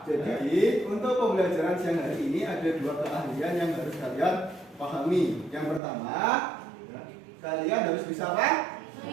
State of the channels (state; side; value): drops out; left; at 5.8 s